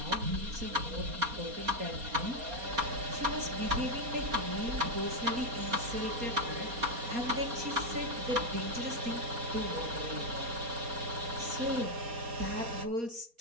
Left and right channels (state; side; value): late; left; 4.2 ms